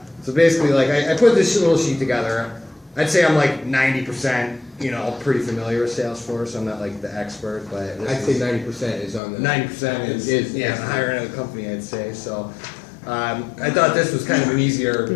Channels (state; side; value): drops out; right; at 9.2 s